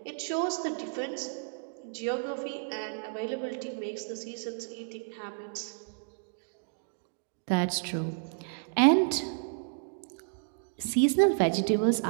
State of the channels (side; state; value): left; silent; digital silence